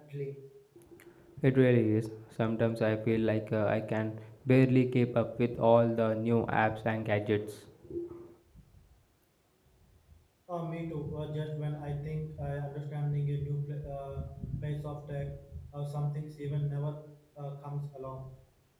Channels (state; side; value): identical; both; correlation 1.00